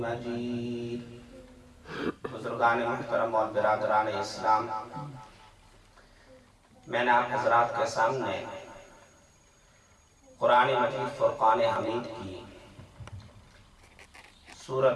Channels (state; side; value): identical; both; correlation 1.00